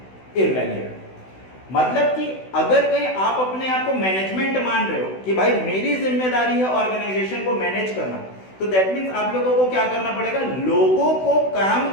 irrelevant. मतलब कि अगर कहीं आप अपने आप को मैनेजमेंट मान रहे हो कि भाई मेरी जिम्मेदारी है ऑर्गेनाइजेशन को मैनेज करना, तो दैट मींस आप लोगों को क्या करना पड़ेगा? लोगों को काम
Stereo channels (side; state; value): right; late; 16 ms